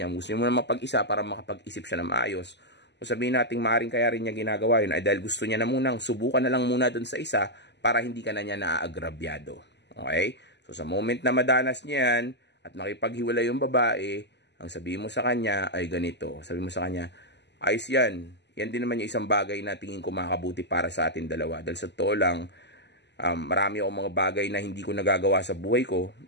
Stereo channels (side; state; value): right; late; 0.50 ms